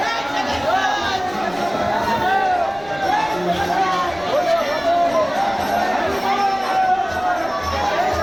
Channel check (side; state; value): right; noise; rumble, 21 dB below the sound